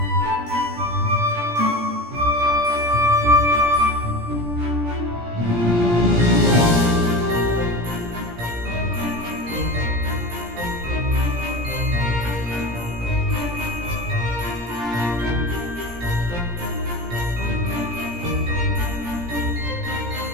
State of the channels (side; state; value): left; late; 17 ms